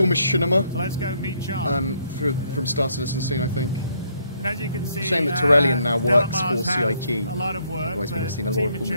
machinima. So let's go meet John. From Star Citizen soon, I think. And as you can see, shame that Torellian now works for CIG. A lot of work. Otherwise, we'd have seen a lot of cool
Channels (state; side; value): inverted; both; correlation -0.70